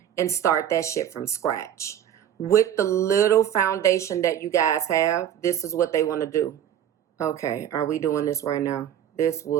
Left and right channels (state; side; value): quieter; left; 10.3 dB